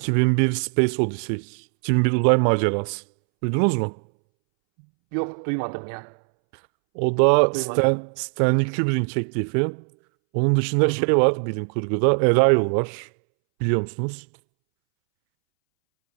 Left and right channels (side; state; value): left; silent; 65 dB below the other